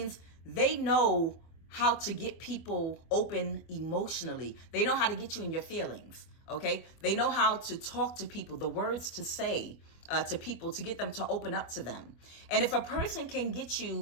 they know how to get people open emotionally. They know how to get you in your feelings, okay? They know how to talk to people, the words to say to people to get them to open up to them. And if a person can get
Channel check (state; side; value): late; right; 25 ms